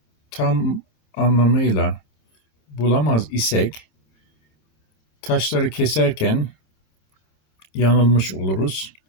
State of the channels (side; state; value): right; late; 27 ms